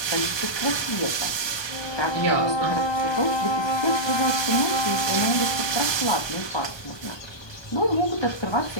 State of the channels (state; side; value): late; right; 1.2 ms